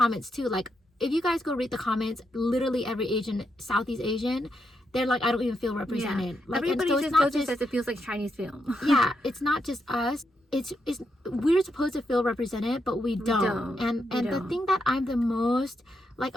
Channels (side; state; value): both; normal; correlation 0.82